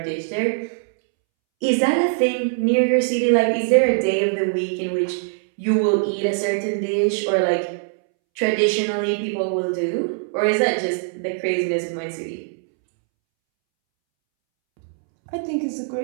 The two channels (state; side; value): silent; left; 64 dB below the other